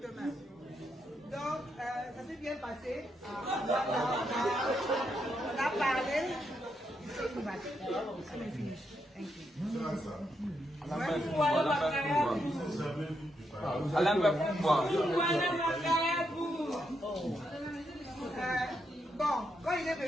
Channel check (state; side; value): normal; both; correlation 0.80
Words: demain. Donc, ça s'est bien passé. On a parlé. Alain va pouvoir. Bon, quand il est